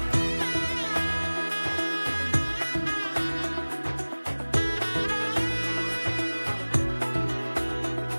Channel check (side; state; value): both; inverted; correlation -1.00